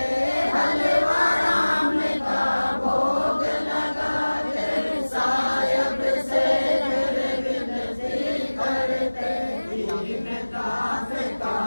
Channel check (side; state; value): both; inverted; correlation -1.00